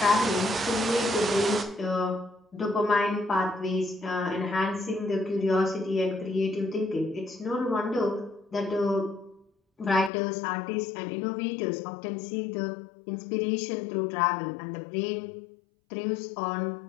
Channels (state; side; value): drops out; right; at 10.1 s